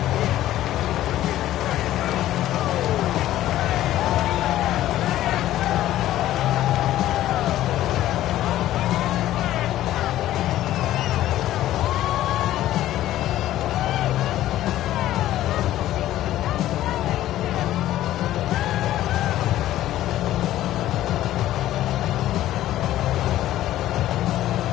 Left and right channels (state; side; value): quieter; right; 13.8 dB